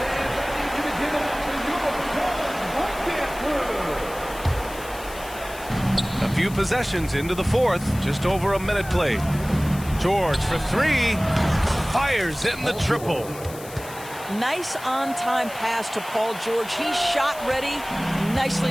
A few possessions into the fourth, just over a minute played. George for three, fires in the triple. Nice on-time pass to Paul George. He's shot ready.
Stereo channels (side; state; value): left; noise; hiss, 16 dB below the sound